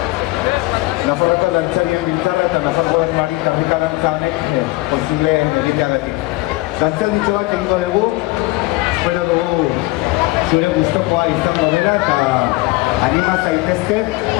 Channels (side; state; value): right; quieter; 21.1 dB